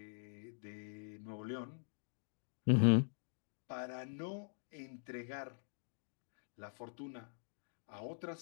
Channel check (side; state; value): right; silent; digital silence